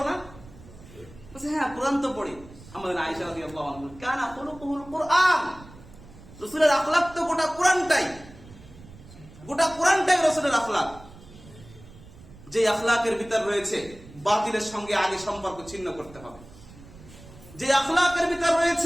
না? বলছে হ্যাঁ, কোরআন তো পড়ি। আমাদের আয়েশা রাদিয়াল্লাহু আনহা কানা খুলুকুল কুরআন, রাসূলের আখলাক তো গোটা কোরআনটাই, গোটা কোরআনটাই রাসূলের আখলাক। যে আখলাকের ভিতর রয়েছে বাতিলের সঙ্গে আগে সম্পর্ক ছিন্ন করতে হবে, যে আখলাকের ভিতর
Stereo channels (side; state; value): right; noise; rumble, 20 dB below the sound